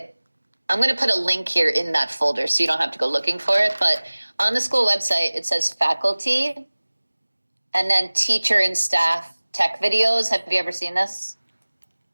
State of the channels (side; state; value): both; inverted; correlation -1.00